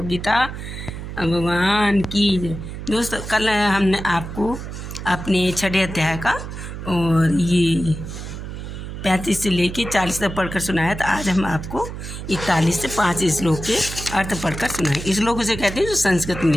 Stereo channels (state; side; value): noise; right; hum, 9 dB below the sound